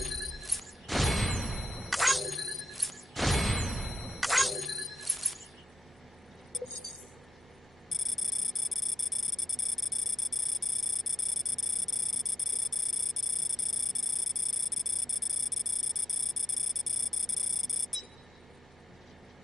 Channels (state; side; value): normal; both; correlation 0.84